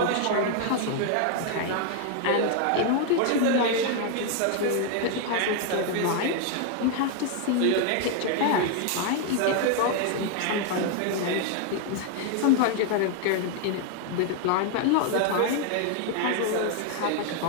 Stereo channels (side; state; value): both; different; correlation 0.00